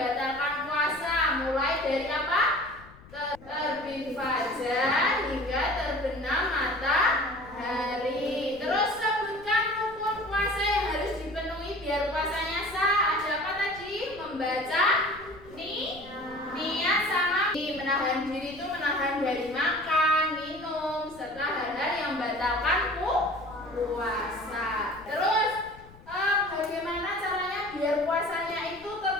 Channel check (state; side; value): noise; left; rumble, 21 dB below the sound